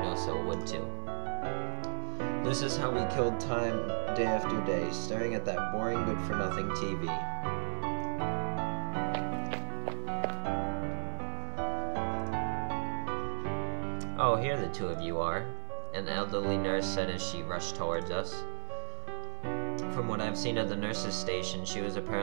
would too. This is how we killed time day after day, staring at that boring good-for-nothing TV. Oh, here the two of you are, an elderly nurse said as she rushed towards us. From what I've seen of the nurse's station, she was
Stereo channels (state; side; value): silent; left; digital silence